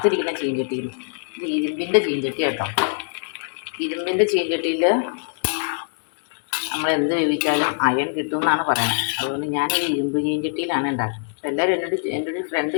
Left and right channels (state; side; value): silent; right; digital silence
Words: ചീഞ്ചട്ടിയിൽ. ഇത് ഇരുമ്പിൻ്റെ ചീഞ്ചട്ടി കേട്ടോ. ഇരുമ്പിൻ്റെ ചീഞ്ചട്ടിയിൽ നമ്മൾ എന്ത് വേവിച്ചാലും അയൺ കിട്ടുമെന്നാണ് പറയുന്നത്. അതുകൊണ്ട് ഞാനൊരു ഇരുമ്പ് ചീഞ്ചട്ടിയിലാണ് ഉണ്ടാക്കുന്നത്. അപ്പോൾ എല്ലാവരും എൻ്റെ ഒരു ഫ്രണ്ട്